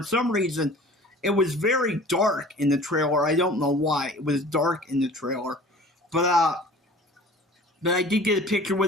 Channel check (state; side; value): normal; both; correlation 0.45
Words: some reason, it was very dark in the trailer. I don't know why. It was dark in the trailer. But I did get a picture